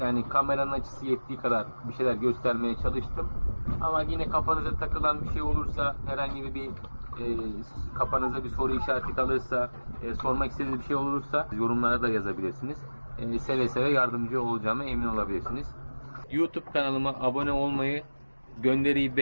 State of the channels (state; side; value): inverted; both; correlation -1.00